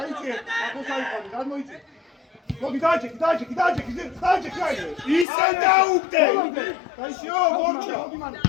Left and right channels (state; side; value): drops out; right; at 5.2 s